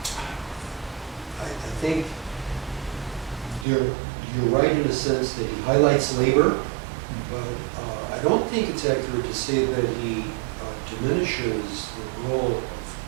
I think you're right in a sense that he highlights labor, but I don't think it's accurate to say that he diminishes the role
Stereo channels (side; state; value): left; drops out; at 3.7 s